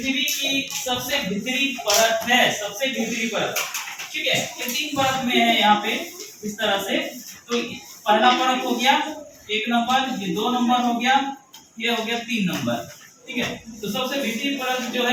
की सबसे भीतरी परत है, सबसे भीतरी परत, ठीक है। ये 3 परत में है यहाँ पे इस तरह से। तो पहला परत हो गया 1 नंबर, ये 2 नंबर हो गया, ये हो गया 3 नंबर, ठीक है। तो सबसे भीतरी परत जो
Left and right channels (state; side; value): identical; both; correlation 1.00